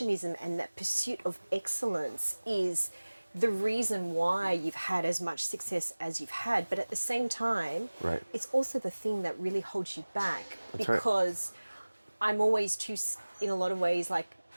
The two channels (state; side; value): inverted; both; correlation -1.00